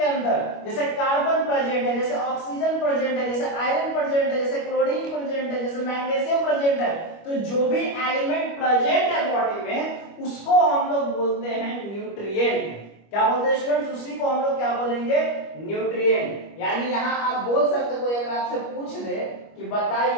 अंदर, जैसे कार्बन प्रेजेंट है, जैसे ऑक्सीजन प्रेजेंट है, जैसे आयरन प्रेजेंट है, जैसे क्लोरीन प्रेजेंट है, जैसे मैग्नीशियम प्रेजेंट है, तो जो भी एलिमेंट प्रेजेंट है बॉडी में, उसको हम लोग बोलते हैं न्यूट्रिएंट। क्या बोलते हैं स्टूडेंट्स? उसी को हम लोग क्या बोलेंगे? न्यूट्रिएंट। यानी यहां आप बोल सकते, कोई अगर आपसे पूछ दे कि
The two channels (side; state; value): right; late; 25 ms